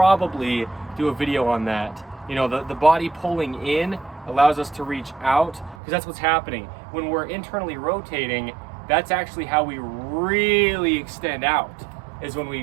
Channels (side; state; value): left; drops out; at 5.8 s